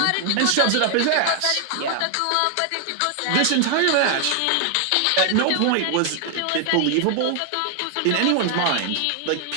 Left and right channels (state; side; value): different; both; correlation 0.00